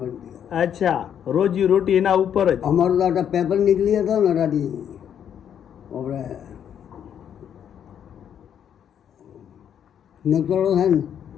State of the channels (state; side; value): quieter; right; 9.0 dB